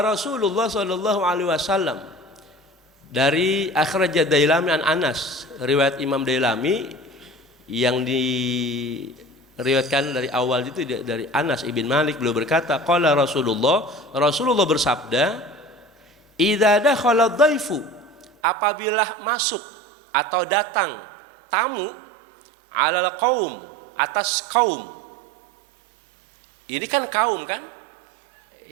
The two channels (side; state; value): left; drops out; at 18.3 s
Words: Rasulullah sallallahu alaihi wasallam, dari akhraj Dailami an Anas, riwayat Imam Dailami yang diriwayatkan dari awal itu dari Anas ibn Malik, beliau berkata, qala Rasulullah bersabda, idza dakhala dhaifu, apabila masuk atau datang tamu, alal qaum, atas kaum. Ini kan kaum kan?